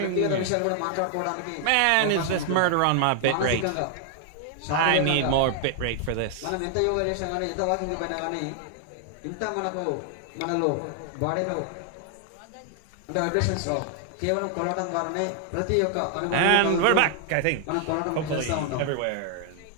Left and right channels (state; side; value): different; both; correlation 0.00